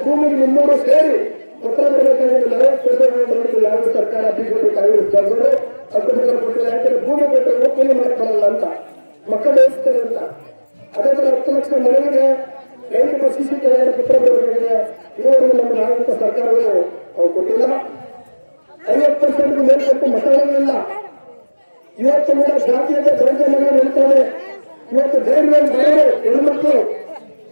ಭೂಮಿಗೆ ನಿಮ್ಮೂರು ಸೇರಿ ಪತ್ರ ಬರಬೇಕಾದ್ರೆ 40% ಯಾವ ಸರ್ಕಾರ ಬಿಜೆಪಿ ಕಾಂಗ್ರೆಸ್ ತಂದರು 10% ಕೊಟ್ಟಿಲ್ಲ. ಯಾಕಂದ್ರೆ ಭೂಮಿ ಕೊಟ್ಟರೆ ಒಪ್ಪಂದ ಮಾಡಕ್ಕಾಗಲ್ಲ ಅಂತ, ಮಕ್ಕಳು ಬೇಯಿಸ್ತಾರೆ ಅಂತ. ಅದೇ ತರ 10 ಲಕ್ಷ ಮನೆಗೆ ರೈತರ ಸಿಸಿ ಕಲ್ಯಾಣ ಪತ್ರ ಬರಬೇಕಾಗಿದೆ. ಇದುವರೆಗೂ ನಮ್ಮ ನಾಗರಿಕ ಸರ್ಕಾರಗಳು ಕೊಟ್ಟಿಲ್ಲ. 50% ಮೇಲ್ಪಟ್ಟು ಮತಗಳಿಲ್ಲ. ಇವತ್ತು ಕೂಡ ಜಾತೀಯತೆ ದೌರ್ಜನ್ಯ ನಿಲ್ತಾರೆ. ಇವತ್ತು ಧೈರ್ಯ ಬರೋರು ಹೆಣ್ಮಕ್ಳು,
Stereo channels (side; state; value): both; inverted; correlation -1.00